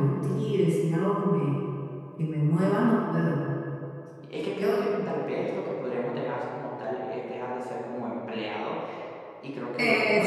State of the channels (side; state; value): both; identical; correlation 1.00